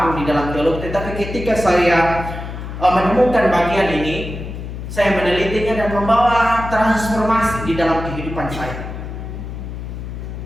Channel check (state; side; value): noise; left; hum, 8 dB below the sound